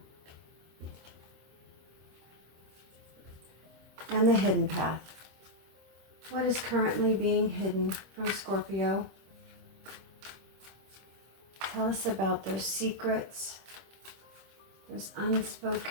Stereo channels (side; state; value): left; late; 26 ms